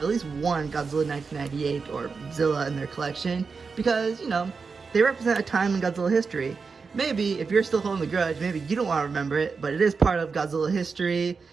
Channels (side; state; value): left; quieter; 5.0 dB